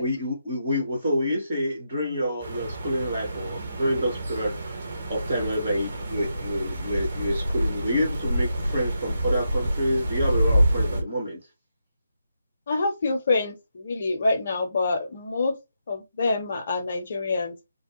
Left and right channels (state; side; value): inverted; both; correlation -0.83